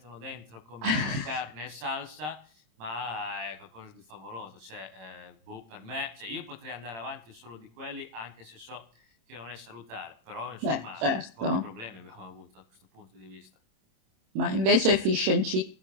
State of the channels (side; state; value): left; late; 26 ms